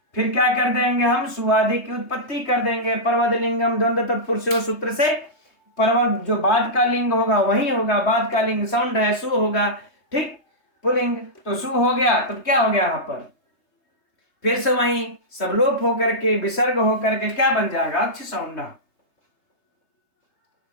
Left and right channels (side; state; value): right; late; 3.3 ms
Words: फिर क्या कर देंगे हम, सुआदि की उत्पत्ति कर देंगे, पर्वत लिंगम द्वंद्व तत्पुरुषो सूत्र से पर्वत जो बाद का लिंग होगा वही होगा, बाद का लिंग सौंड है, सु होगा, ठीक, पुलिंग, तो सु हो गया, तो क्या हो गया यहाँ पर फिर से वही सब लोप होकर के विसर्ग होकर के क्या बन जाएगा, अक्ष सौंड